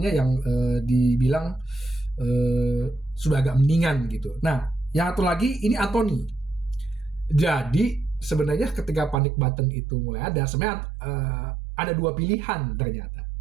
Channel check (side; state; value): left; drops out; at 9.2 s